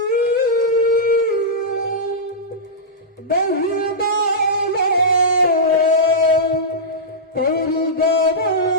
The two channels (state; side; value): normal; both; correlation -0.13